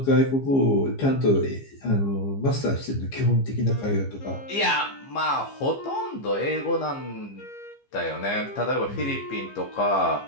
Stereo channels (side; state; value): right; late; 15 ms